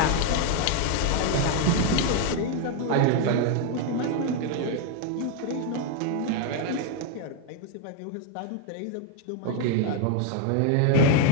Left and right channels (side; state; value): both; different; correlation 0.01